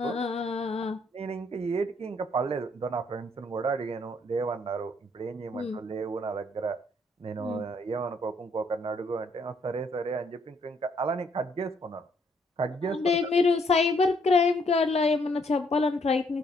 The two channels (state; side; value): normal; both; correlation 0.69